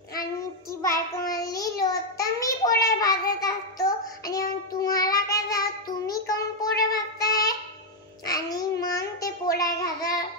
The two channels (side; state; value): both; normal; correlation 0.00